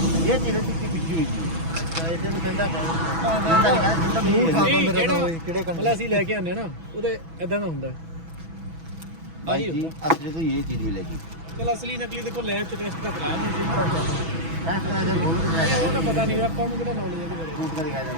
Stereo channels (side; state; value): left; late; 6.1 ms